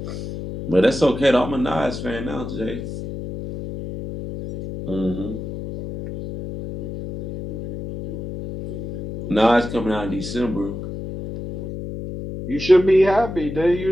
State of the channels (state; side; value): noise; left; hum, 8 dB below the sound